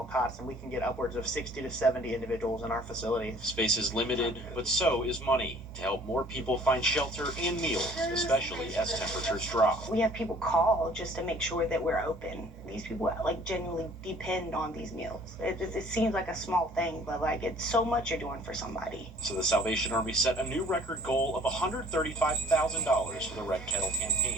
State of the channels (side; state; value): both; normal; correlation 0.54